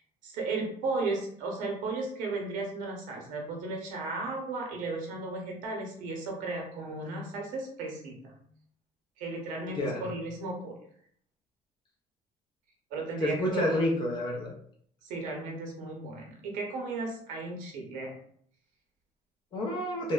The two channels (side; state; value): both; normal; correlation 0.50